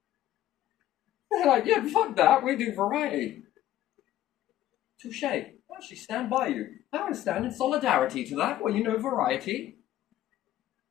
They're like, yeah, fuck that, we do variety. Touche. I actually stand by you. I understand in solidarity to that. Well, you know, variety.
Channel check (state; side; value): quieter; right; 13.3 dB